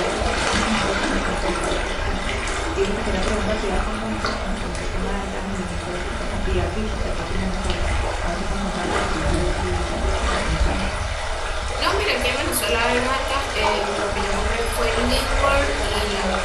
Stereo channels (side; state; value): both; identical; correlation 1.00